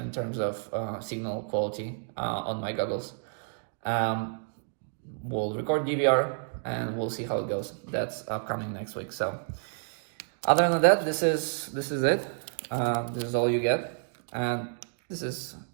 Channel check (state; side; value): silent; left; digital silence